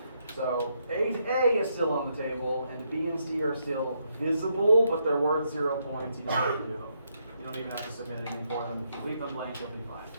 So 8A is still on the table, and B and C are still visible, but they're worth 0 points. You don't have to do them. You don't even have to submit anything for them. If you leave them blank, you'll be fine.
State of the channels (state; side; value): inverted; both; correlation -0.78